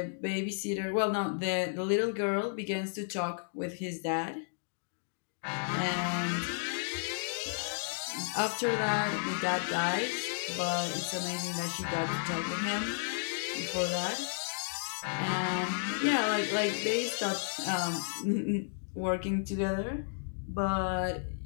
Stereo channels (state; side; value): silent; right; digital silence